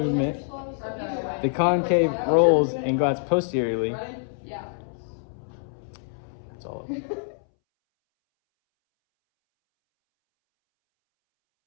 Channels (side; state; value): right; silent; 61 dB below the other